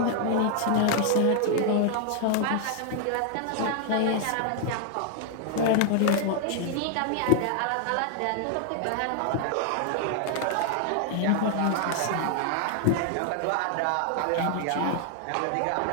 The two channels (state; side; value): different; both; correlation 0.00